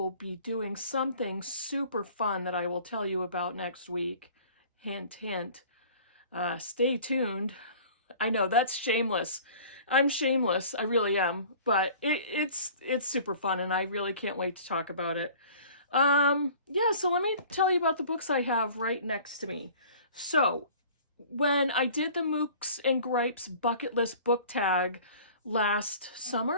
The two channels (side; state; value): both; inverted; correlation -0.47